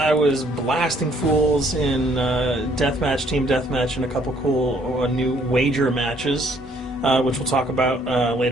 was blasting fools in deathmatch, team deathmatch, and a couple cool new wager matches, which we'll talk about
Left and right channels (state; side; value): normal; both; correlation 0.64